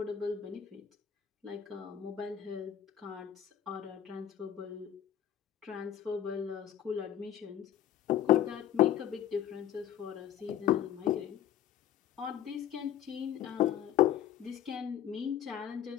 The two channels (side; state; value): right; quieter; 10.5 dB